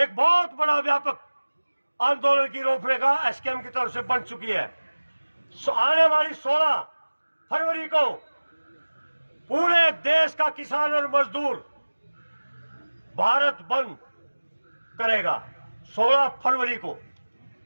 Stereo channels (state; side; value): inverted; both; correlation -1.00